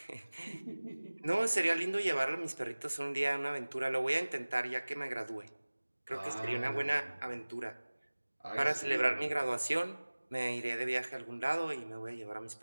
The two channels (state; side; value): inverted; both; correlation -1.00